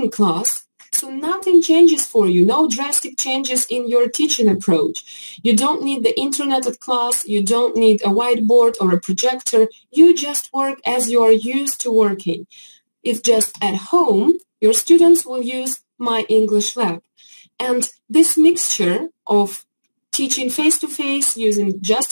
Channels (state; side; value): inverted; both; correlation -1.00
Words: class, so nothing changes for you, no drastic changes in your teaching approach. You don't need the internet at class, you don't need a whiteboard or a projector, you just work as you are used to working. It's just at home, your students will use My English Lab. And this mixture of teaching face-to-face, using